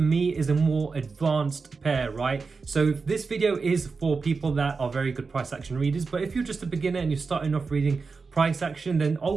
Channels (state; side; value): quieter; left; 4.6 dB